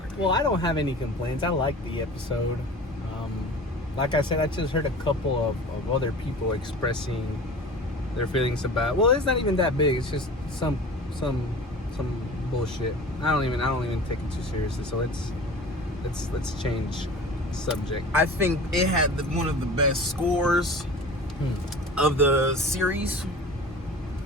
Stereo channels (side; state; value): both; normal; correlation 0.38